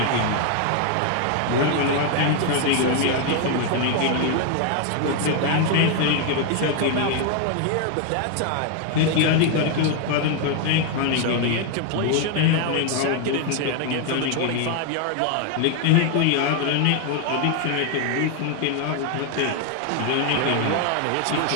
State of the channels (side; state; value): both; different; correlation 0.00